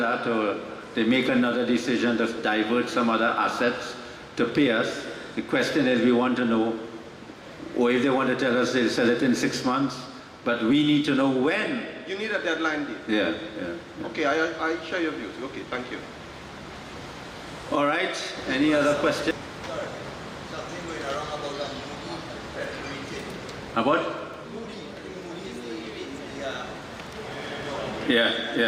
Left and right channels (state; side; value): identical; both; correlation 1.00